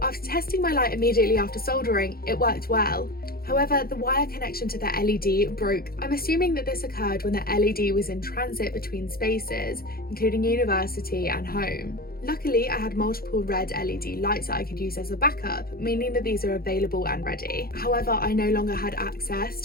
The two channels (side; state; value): right; late; 0.44 ms